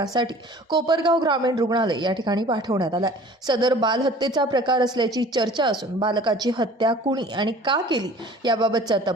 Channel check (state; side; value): normal; both; correlation 0.47